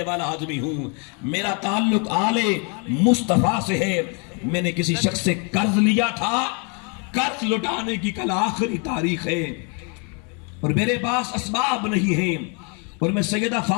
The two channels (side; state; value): right; quieter; 35.9 dB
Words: والا آدمی ہوں. میرا تعلق آل مصطفیٰ سے ہے. میں نے کسی شخص سے قرض لیا تھا, قرض لٹانے کی کل آخری تاریخ ہے, اور میرے پاس اسباب نہیں ہیں, اور میں سیدہ